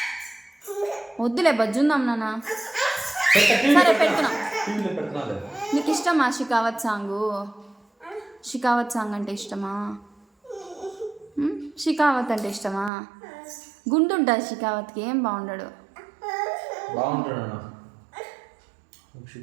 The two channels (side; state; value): left; drops out; at 12.9 s